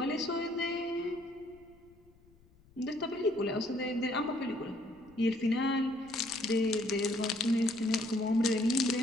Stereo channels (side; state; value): left; noise; rumble, 28 dB below the sound